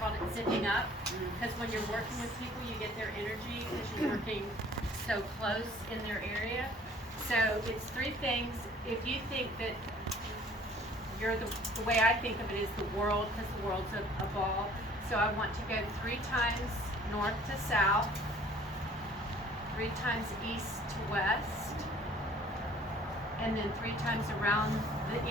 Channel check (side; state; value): both; normal; correlation 0.53